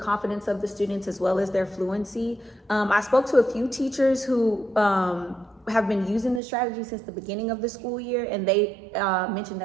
of the students as well as their fluency. I spoke to a few teachers who have been using this strategy since the beginning of the school year, and they mentioned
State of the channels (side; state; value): left; drops out; at 6.4 s